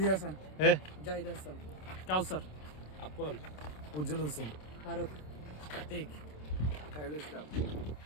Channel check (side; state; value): right; late; 27 ms